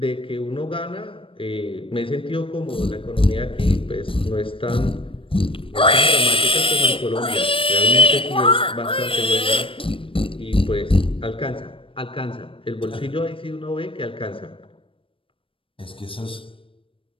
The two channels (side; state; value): right; late; 0.26 ms